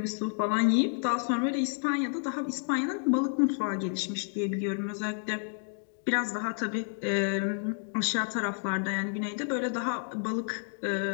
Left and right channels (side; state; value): right; silent; 58 dB below the other